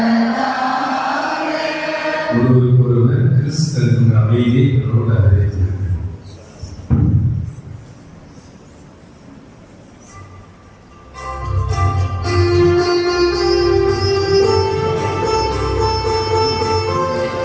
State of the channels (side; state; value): both; identical; correlation 1.00